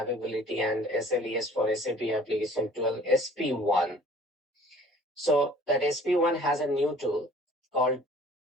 and SLES for SAP application 12 SP1. So that SP1 has a new tool called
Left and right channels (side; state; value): both; normal; correlation 0.51